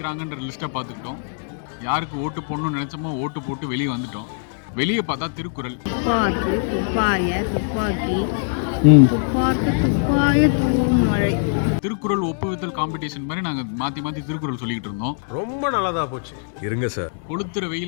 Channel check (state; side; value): silent; right; digital silence